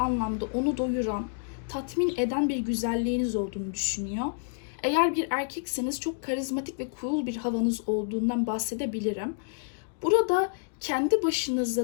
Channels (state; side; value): silent; right; digital silence